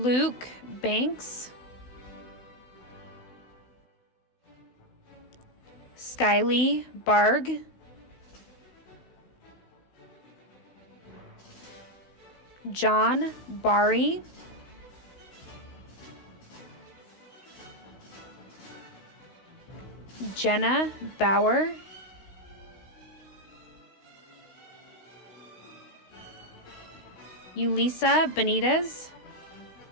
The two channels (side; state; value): right; late; 16 ms